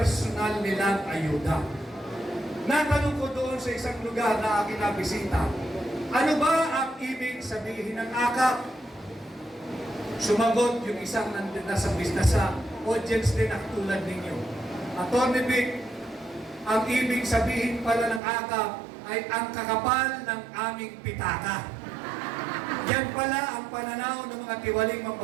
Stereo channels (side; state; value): left; drops out; at 18.2 s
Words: nilang ayuda. Natanong ko doon sa isang lugar na aking nabisita, ano ba ang ibig sabihin ng AKAP? Sumagot yung isang nasa business sa audience din na tulad ninyo. Atty. Vic, ang ibig sabihin pala ng AKAP ay ang kakapal ng aming pitaka. Yan pala ang pananaw ng mga tiwaling